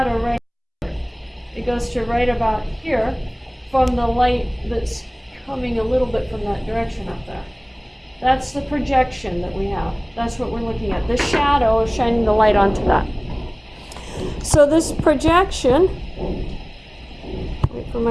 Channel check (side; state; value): both; identical; correlation 1.00